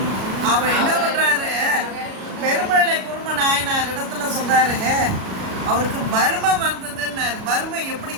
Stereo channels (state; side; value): late; left; 37 ms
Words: அவர் என்ன பண்றாரு, பெருமழை குரும நாயனார் இடத்துல சொல்றாரு, அவருக்கு வறுமை வந்ததுன்னாரு. வறுமை